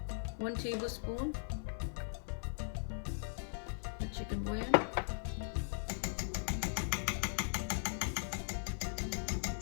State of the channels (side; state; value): right; silent; 52 dB below the other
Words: 1 tablespoon of chicken bouillon.